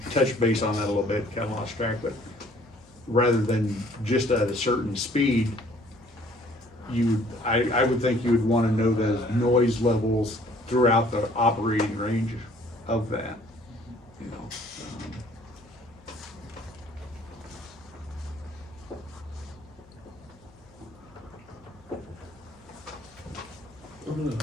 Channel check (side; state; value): left; noise; hum, 29 dB below the sound